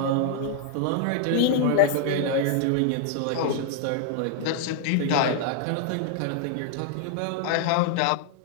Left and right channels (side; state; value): both; different; correlation -0.01